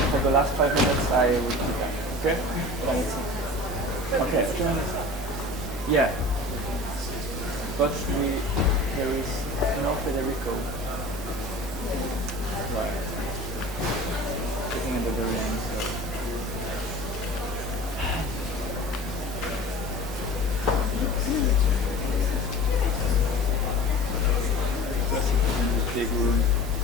For the last 5 minutes, I will do that. Okay? Okay. Yeah. But there is no Federico. Right. Sitting at the very end. So. Big room.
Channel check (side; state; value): both; normal; correlation 0.39